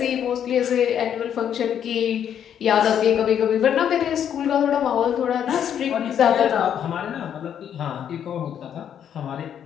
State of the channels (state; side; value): quieter; right; 9.1 dB